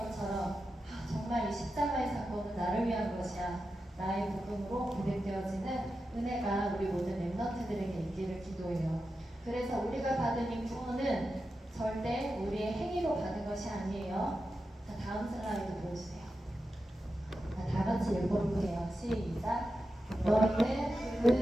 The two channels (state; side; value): normal; both; correlation 0.90